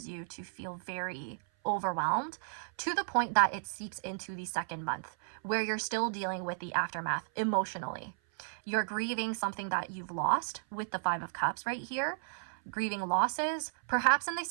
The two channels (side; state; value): left; silent; 55 dB below the other